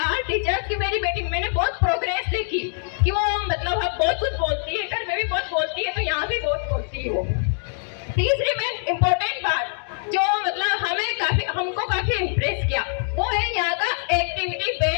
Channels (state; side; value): silent; right; 63 dB below the other